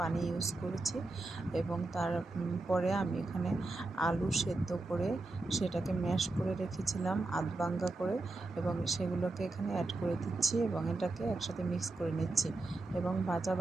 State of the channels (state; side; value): quieter; left; 3.1 dB